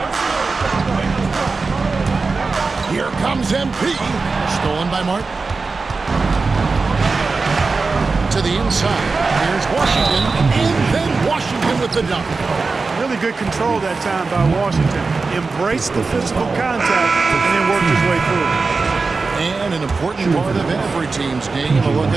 Here comes MP. Stolen by Martin. To the inside. Here's Washington. And then Washington with the dunk. Really good control that time by Washington. Embraced the physical contact and then worked his way through it. And an important part of every team's game, a look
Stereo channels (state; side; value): quieter; left; 4.1 dB